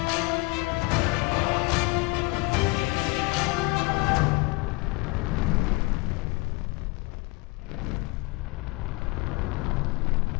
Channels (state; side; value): quieter; right; 25.1 dB